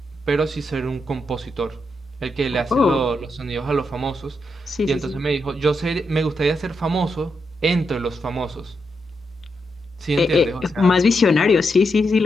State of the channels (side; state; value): both; normal; correlation 0.83